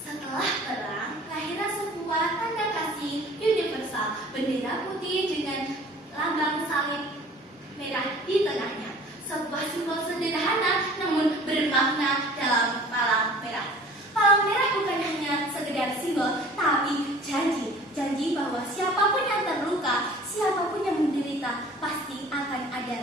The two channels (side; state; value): both; normal; correlation 0.47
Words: perang, lahirlah sebuah tanda kasih universal, bendera putih dengan lambang salib merah di tengahnya. Sebuah simbol sederhana namun bermakna dalam palang merah. Palang merah bukan hanya sekedar simbol, tapi janji bahwa siapapun yang terluka, siapapun yang menderita, pasti akan